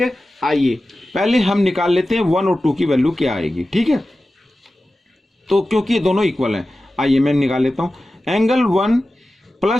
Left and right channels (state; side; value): normal; both; correlation 0.94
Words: आइए पहले हम निकाल लेते हैं 1 और 2 की वैल्यू क्या आएगी। ठीक है, तो क्योंकि ये दोनों इक्वल हैं, आइए मैं निकाल लेता हूँ। एंगल 1